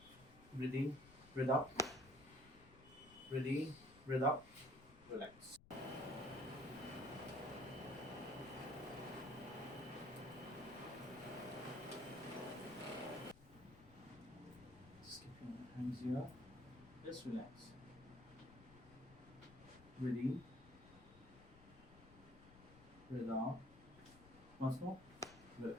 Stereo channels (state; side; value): noise; left; rumble, 20 dB below the sound